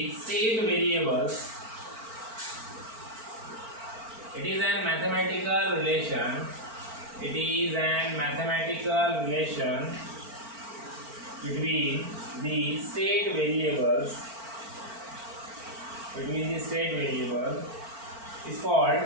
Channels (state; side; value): late; left; 4.4 ms